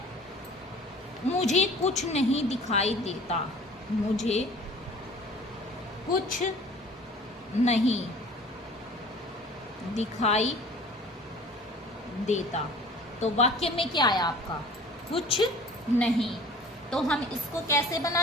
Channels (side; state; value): both; normal; correlation 0.46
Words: मुझे कुछ नहीं दिखाई देता। मुझे कुछ नहीं दिखाई देता। तो वाक्य में क्या आया आपका? कुछ नहीं। तो हम इसको कैसे